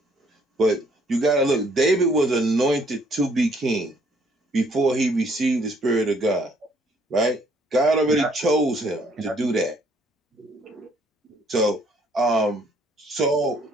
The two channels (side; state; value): both; normal; correlation 0.64